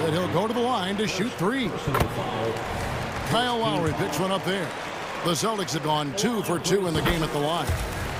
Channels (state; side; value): identical; both; correlation 1.00